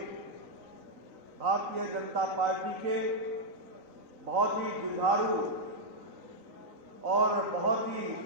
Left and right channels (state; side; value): late; left; 3.9 ms